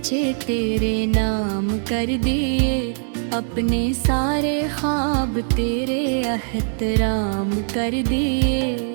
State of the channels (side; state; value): left; silent; digital silence